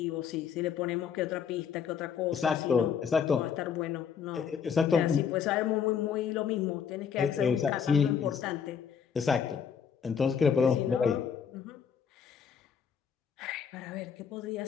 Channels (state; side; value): quieter; right; 7.2 dB